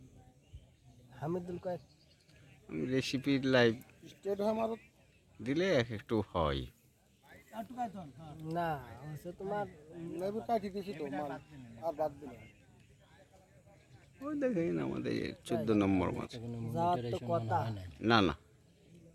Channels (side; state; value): both; identical; correlation 1.00